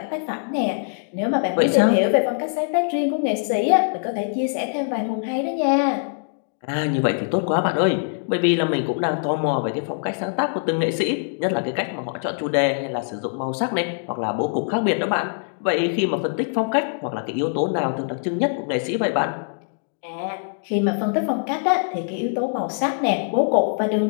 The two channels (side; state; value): right; silent; digital silence